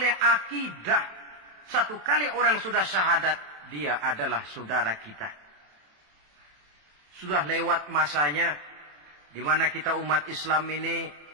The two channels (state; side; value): late; left; 27 ms